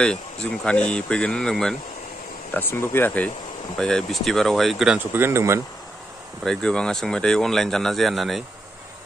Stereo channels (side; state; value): both; normal; correlation 0.83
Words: दै जुमखानि फैगोन होनदोंमोन दासिमबो फैयाखै ओमफ्राय बिस्तिबारावहाय गोदान सफैगोन होनदोंमोन ओमफ्राय गोबाङा सोंबाय थायो अनलाइन जाना जाया होननानै